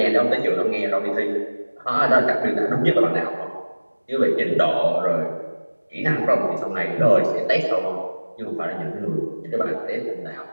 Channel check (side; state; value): both; inverted; correlation -1.00